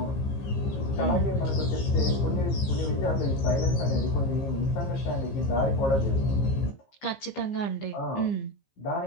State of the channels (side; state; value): right; late; 15 ms